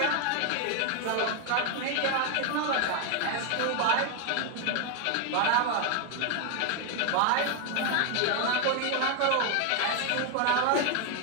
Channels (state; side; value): different; both; correlation 0.01